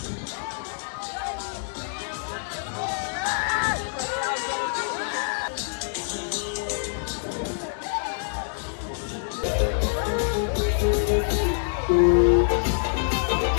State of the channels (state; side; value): silent; right; 61 dB below the other